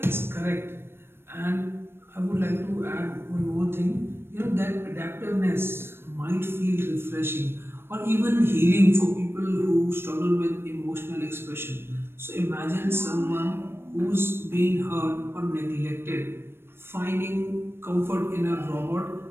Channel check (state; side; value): late; left; 0.11 ms